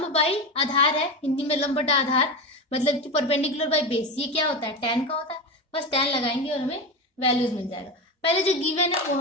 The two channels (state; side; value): normal; both; correlation 0.20